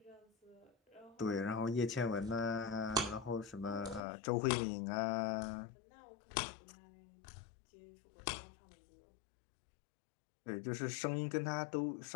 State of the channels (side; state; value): right; drops out; at 4.0 s